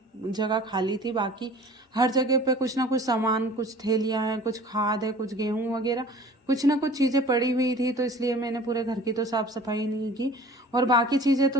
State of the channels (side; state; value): both; normal; correlation 0.46